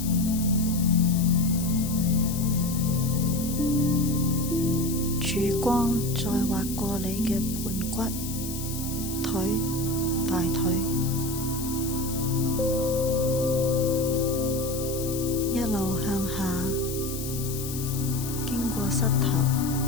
曙光再劃過你嘅盤骨、腿、大腿，一路向下，經過膝頭、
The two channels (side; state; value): left; noise; hiss, 8 dB below the sound